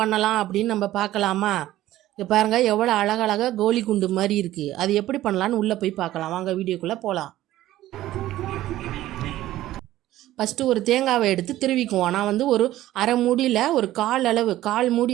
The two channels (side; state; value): left; quieter; 14.7 dB